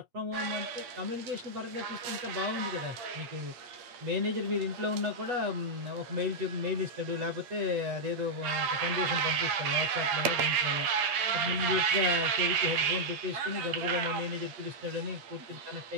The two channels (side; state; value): left; late; 8.6 ms